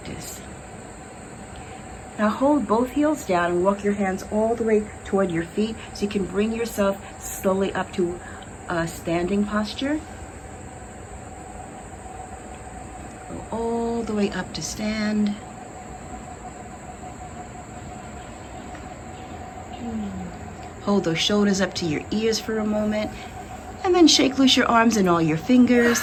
Now hold both heels down and walk your hands all the way toward your feet so you can bring yourself slowly up to a standing posture. Go all the way up to stand. Hold those shoulders up to your ears for a moment. And then shake loose your arms and all your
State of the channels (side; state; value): both; identical; correlation 1.00